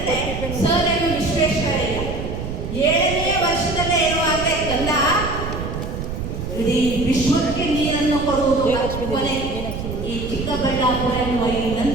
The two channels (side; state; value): right; noise; rumble, 6 dB below the sound